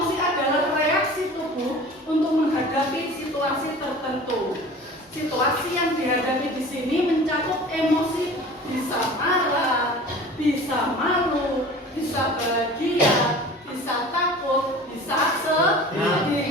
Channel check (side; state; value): both; normal; correlation 0.41